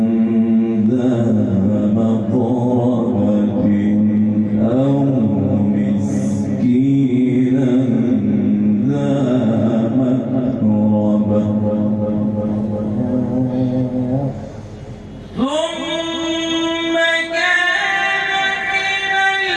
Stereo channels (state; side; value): identical; both; correlation 1.00